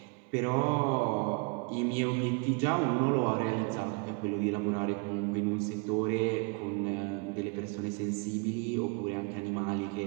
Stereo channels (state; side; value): quieter; left; 34.2 dB